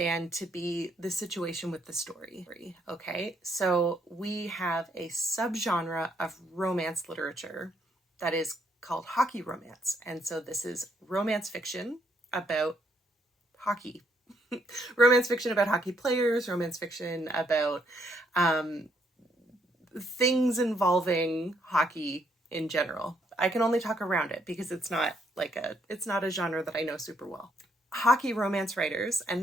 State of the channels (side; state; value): both; normal; correlation 0.72